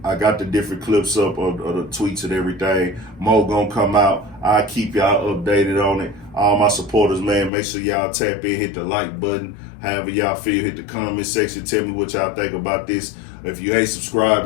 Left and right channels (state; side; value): drops out; right; at 7.5 s